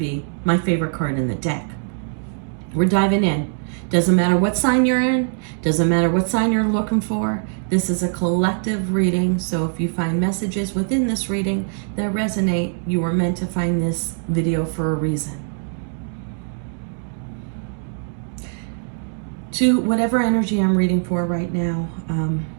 my favorite card in the deck. We're diving in. Doesn't matter what sign you're in, doesn't matter what sign you're looking for. This is a collective reading, so if you find messages within this reading that resonate, you were meant to find this video for a reason. To whatever energy I'm reading for right now,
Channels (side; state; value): left; silent; 59 dB below the other